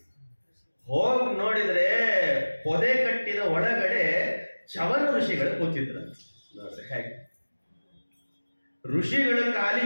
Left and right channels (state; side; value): inverted; both; correlation -1.00